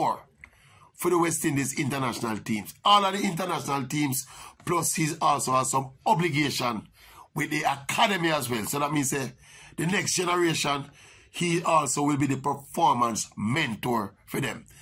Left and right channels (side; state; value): both; identical; correlation 1.00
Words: for the West Indies international teams. All of the international teams, plus he also has some obligation with the academy as well. So that means the next generation, he also will be the performance mentor for them.